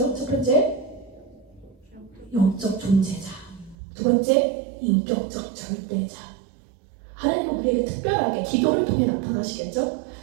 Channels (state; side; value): drops out; left; at 3.8 s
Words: 첫 번째, 영적 존재자. 두 번째, 인격적 절대자. 하나님은 우리에게 특별하게 기도를 통해 나타나시겠죠?